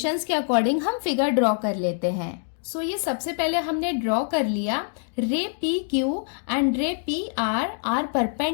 के अकॉर्डिंग हम फिगर ड्रॉ कर लेते हैं। सो ये सबसे पहले हमने ड्रॉ कर लिया, ray P Q and ray P R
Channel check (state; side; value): silent; right; 62 dB below the other